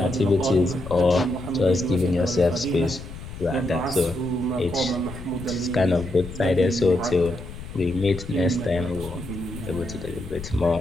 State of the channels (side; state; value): left; noise; rumble, 12 dB below the sound